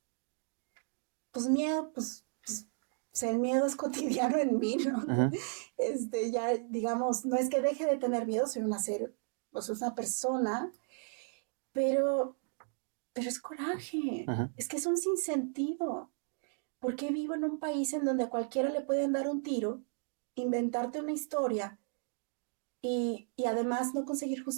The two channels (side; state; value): left; silent; 55 dB below the other